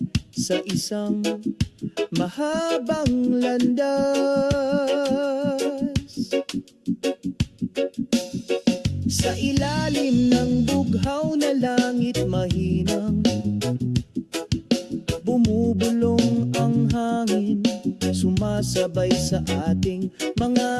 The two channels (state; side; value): identical; both; correlation 1.00